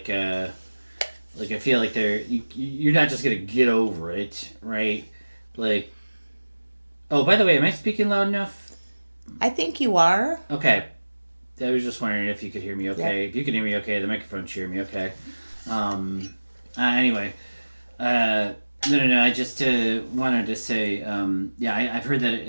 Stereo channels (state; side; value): inverted; both; correlation -1.00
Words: you're not just gonna get over it, right? Like, oh, by the way, am I speaking loud enough? I think you are. Okay. I was just wondering if you could hear me okay. Yep. If you can hear me okay, the microphone should hear me okay. Anyway, No. I just wanted to say, yeah, I've heard that